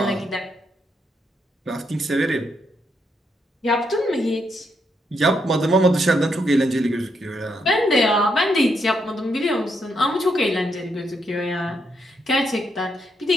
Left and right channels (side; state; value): both; normal; correlation 0.78